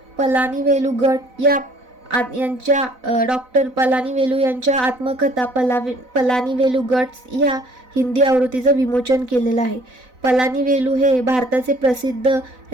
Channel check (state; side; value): late; left; 4.0 ms